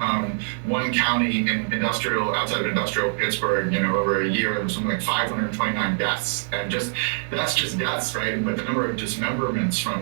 one county outside of industrial Pittsburgh, over a year, there was something like 529 deaths, and that's just deaths, right? But the number of dismemberments from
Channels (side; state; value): left; silent; digital silence